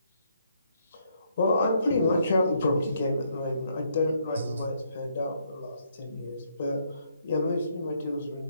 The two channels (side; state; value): both; inverted; correlation -0.72